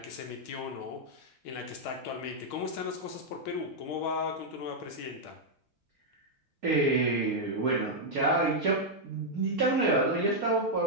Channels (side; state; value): both; normal; correlation -0.03